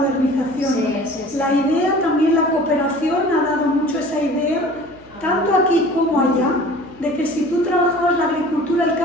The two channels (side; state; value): left; noise; hum, 27 dB below the sound